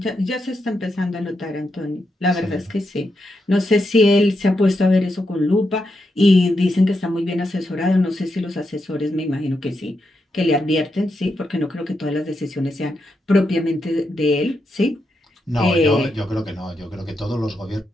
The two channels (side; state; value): both; normal; correlation 0.84